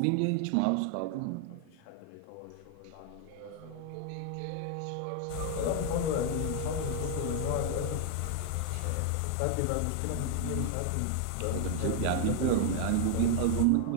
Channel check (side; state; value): both; different; correlation 0.00